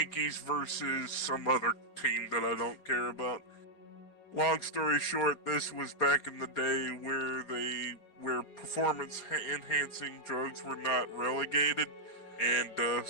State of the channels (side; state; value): right; late; 4.9 ms